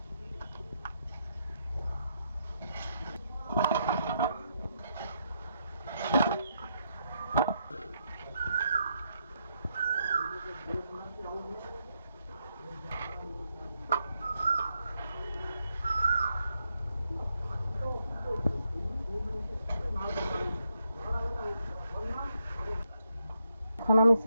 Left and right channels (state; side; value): inverted; both; correlation -0.79